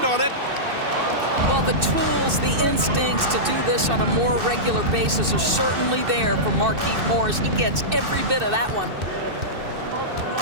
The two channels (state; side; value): late; left; 2.6 ms